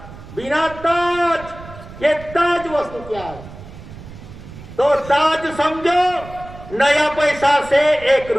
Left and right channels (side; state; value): right; noise; rumble, 16 dB below the sound